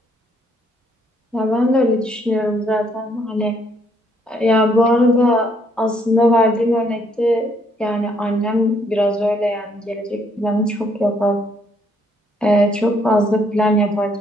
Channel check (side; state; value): both; normal; correlation 0.69